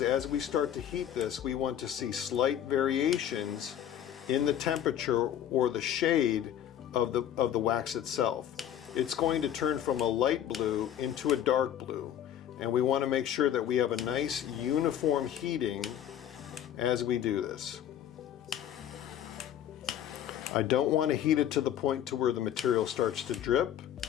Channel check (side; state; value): right; quieter; 10.4 dB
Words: as we start to heat this, we want to see slight variations in the temperature or the shade of the wax itself. It's going to turn from a light blue into a dark blue. And we want to make sure that we have a nice uniform heating as we do this. I don't want to heat it to the point to where the material starts to drip,